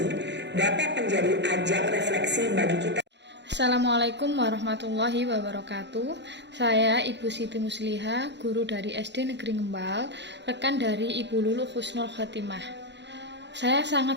dapat menjadi ajang refleksi bagi kita. Assalamualaikum warahmatullahi wabarakatuh. Saya Ibu Siti Musliha, guru dari SD Negeri Ngembal, rekan dari Ibu Lulu Husnul Khotimah. Saya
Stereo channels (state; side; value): late; left; 0.51 ms